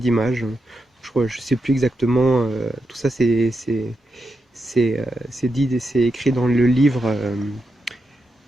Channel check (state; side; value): normal; both; correlation 0.86